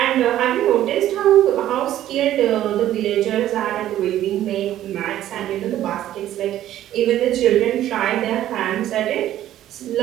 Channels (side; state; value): left; quieter; 12.7 dB